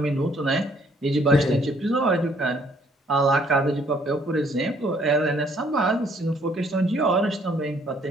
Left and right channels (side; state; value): both; normal; correlation 0.64